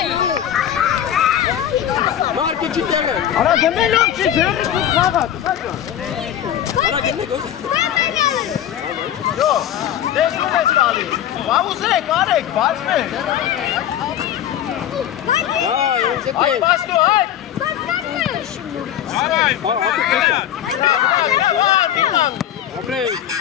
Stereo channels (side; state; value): right; quieter; 10.6 dB